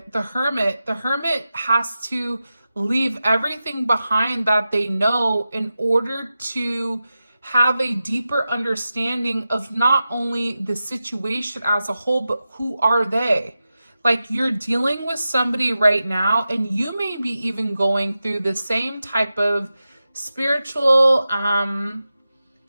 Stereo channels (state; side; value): inverted; both; correlation -0.92